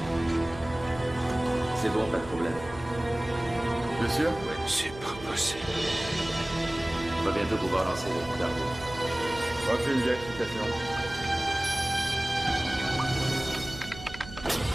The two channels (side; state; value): right; noise; hum, 15 dB below the sound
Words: C'est bon, pas de problème. Bien sûr. C'est pas possible. On va bientôt pouvoir lancer les dardos. Aucune vérification.